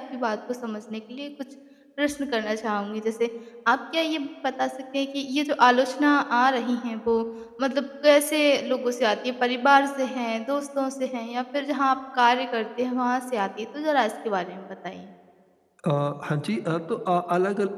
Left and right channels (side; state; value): both; identical; correlation 1.00